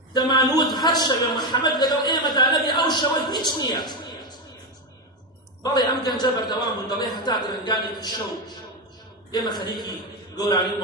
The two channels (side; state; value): both; normal; correlation 0.12